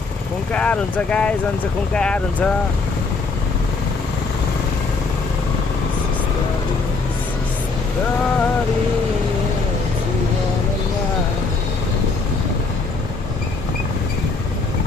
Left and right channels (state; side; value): quieter; right; 4.0 dB